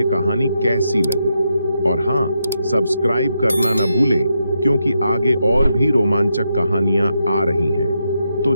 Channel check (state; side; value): inverted; both; correlation -0.83